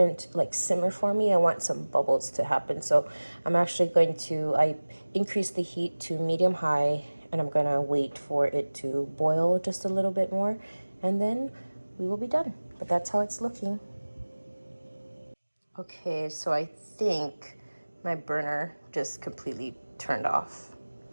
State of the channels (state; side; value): inverted; both; correlation -1.00